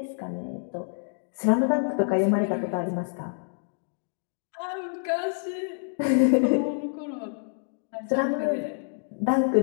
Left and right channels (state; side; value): silent; right; digital silence